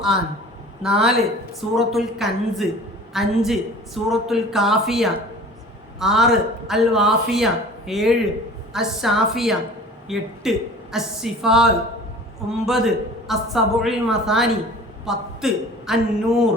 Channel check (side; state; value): both; normal; correlation 0.43